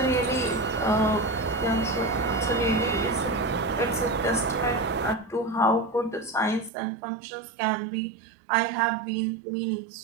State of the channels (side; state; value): left; drops out; at 6.7 s